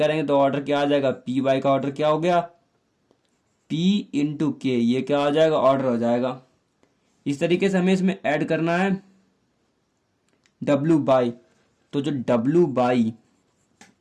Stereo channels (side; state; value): both; identical; correlation 1.00